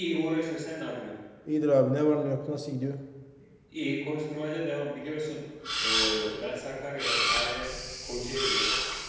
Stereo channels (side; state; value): both; identical; correlation 1.00